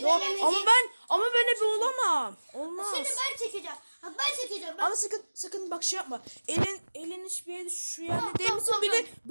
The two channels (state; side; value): inverted; both; correlation -1.00